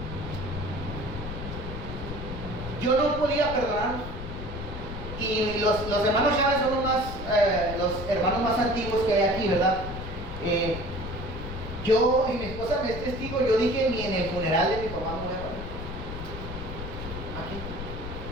yo no podía perdonarlos. Y los hermanos Chávez son los hermanos más antiguos que hay aquí, ¿verdad? Yo y mi esposa me es testigo, yo dije ni en el funeral de mi papá me voy a poner. Aquí,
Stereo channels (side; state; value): left; noise; rumble, 8 dB below the sound